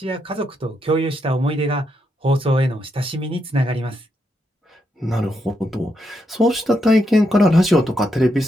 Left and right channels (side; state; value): both; normal; correlation 0.81